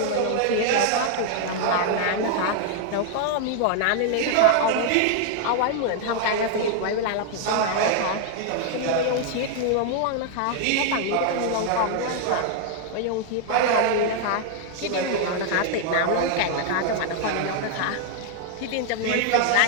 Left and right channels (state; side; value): different; both; correlation 0.00